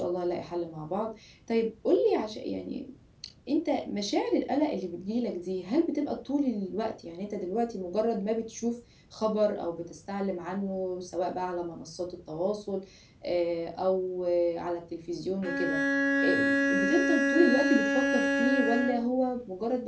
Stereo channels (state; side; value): identical; both; correlation 1.00